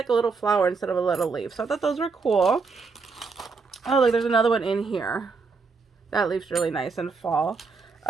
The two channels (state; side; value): quieter; left; 4.6 dB